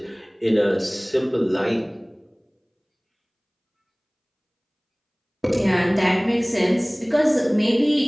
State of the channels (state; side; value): identical; both; correlation 1.00